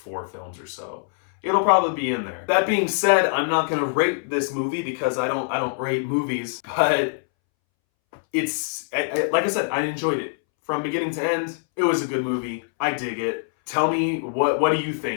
films or so, it'll probably be in there. That being said, I'm not gonna rate this movie because I don't rate movies, but it's like I said, I enjoyed it from beginning to end. It was a good movie. I dig it. Tell me, what do you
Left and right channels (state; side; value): silent; right; 63 dB below the other